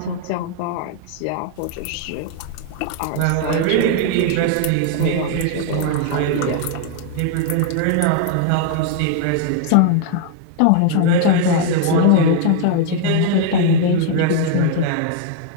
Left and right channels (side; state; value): both; different; correlation 0.00